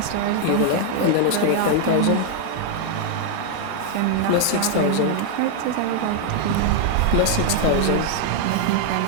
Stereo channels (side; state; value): both; different; correlation 0.00